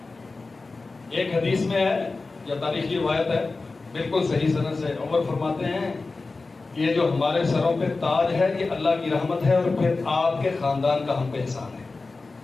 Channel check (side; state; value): right; quieter; 3.7 dB